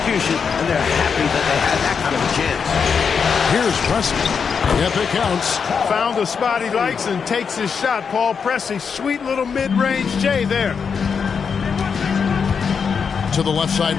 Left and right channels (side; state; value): right; quieter; 6.2 dB